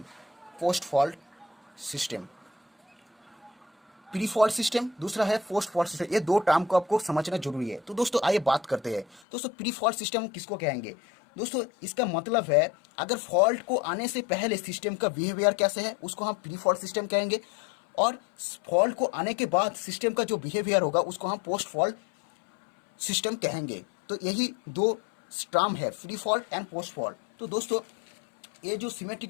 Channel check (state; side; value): drops out; right; at 9.2 s